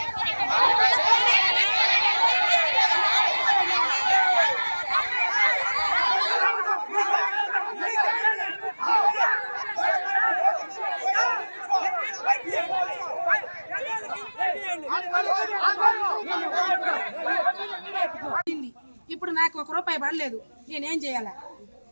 ఇప్పుడు నాకు 1 రూపాయి పడలేదు, నేనేం చేయాలా?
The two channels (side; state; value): both; inverted; correlation -1.00